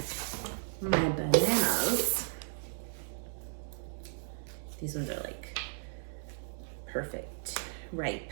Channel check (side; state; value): left; silent; digital silence